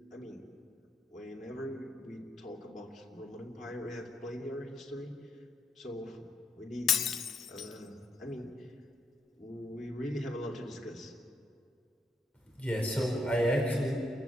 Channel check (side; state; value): both; normal; correlation 0.76